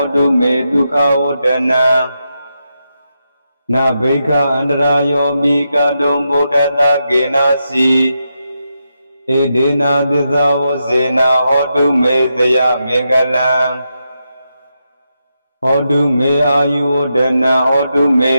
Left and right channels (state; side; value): inverted; both; correlation -0.85